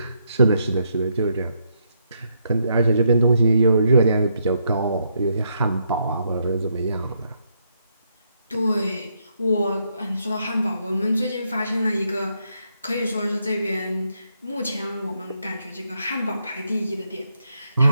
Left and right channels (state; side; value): inverted; both; correlation -0.77